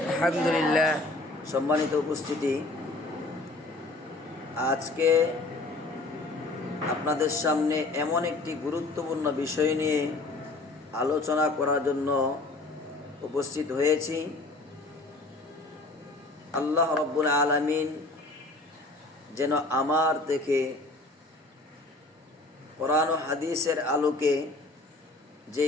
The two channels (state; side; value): quieter; right; 3.0 dB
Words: আলহামদুলিল্লাহ। সম্মানিত উপস্থিতি, আজকে আপনাদের সামনে এমন একটি গুরুত্বপূর্ণ বিষয় নিয়ে আলোচনা করার জন্য উপস্থিত হয়েছি। আল্লাহ রাব্বুল আলামিন যেন আমার থেকে কোরআন ও হাদিসের আলোকে